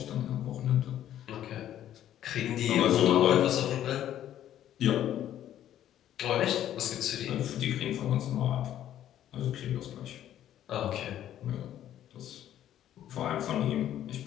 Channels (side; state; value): right; quieter; 11.5 dB